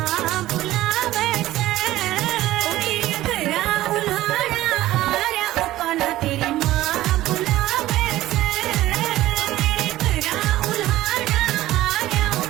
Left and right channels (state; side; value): quieter; left; 15.6 dB